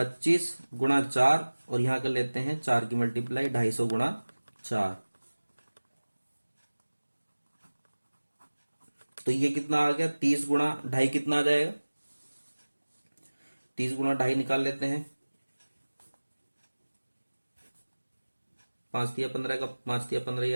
गुणा 4, और यहां कर लेते हैं 4 की मल्टीप्लाई 250 गुणा 4। तो ये कितना आ गया, 30 गुणा 2.5 कितना आ जाएगा, 30 गुणा 2.5 निकाल लेते हैं, 5 दिया 15 का 5 दिया 15 ही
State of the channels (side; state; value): both; inverted; correlation -1.00